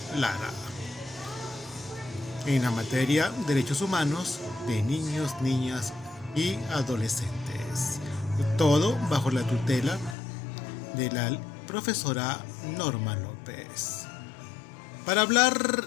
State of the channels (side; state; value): right; drops out; at 10.2 s